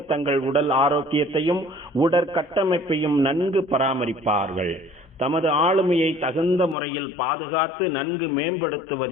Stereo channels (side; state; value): right; drops out; at 6.8 s